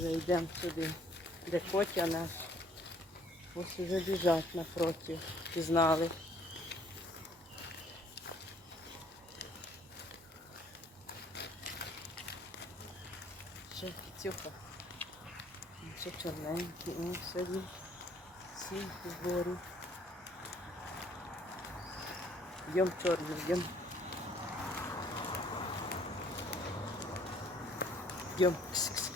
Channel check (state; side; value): normal; both; correlation 0.61